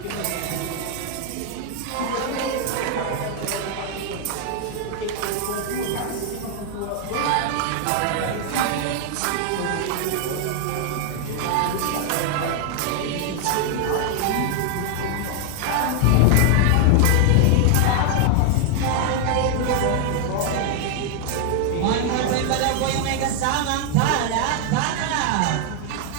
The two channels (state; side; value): different; both; correlation 0.00